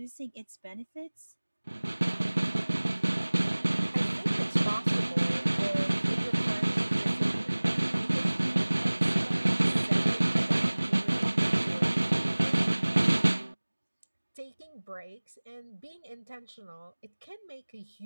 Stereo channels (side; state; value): both; inverted; correlation -1.00